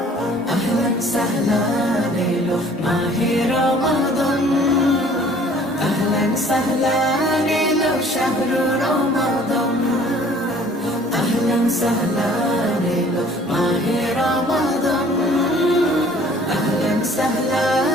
আহলান সাহলান এলো মাহে রমাদান, আহলান সাহলান এলো শাহরু রমাদান। আহলান সাহলান এলো মাহে রমাদান, আহলান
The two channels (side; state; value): both; normal; correlation 0.54